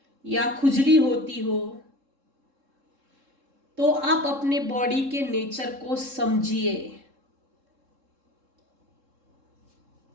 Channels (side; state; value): left; late; 3.7 ms